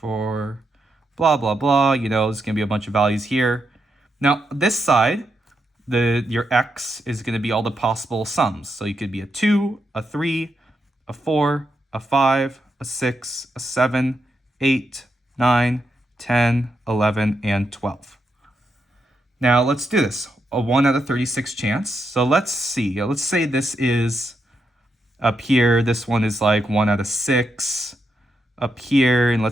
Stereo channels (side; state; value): both; normal; correlation 0.83